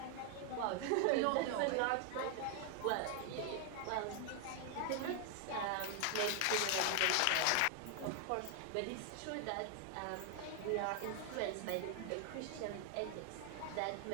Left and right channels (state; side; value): different; both; correlation 0.00